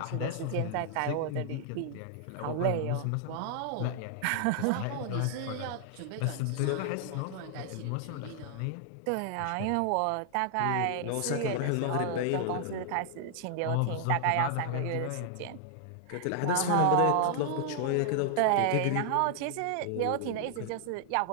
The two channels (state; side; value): different; both; correlation 0.00